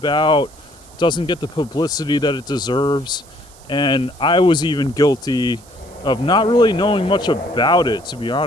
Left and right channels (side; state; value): right; noise; hiss, 25 dB below the sound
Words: doesn't get the publicity that it deserves. And I was even guilty of not really knowing much about it, to be